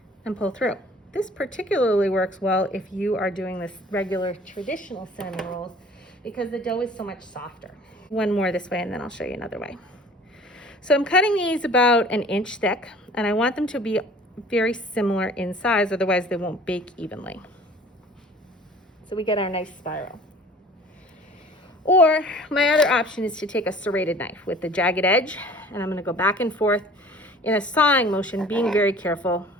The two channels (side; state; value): both; normal; correlation 0.48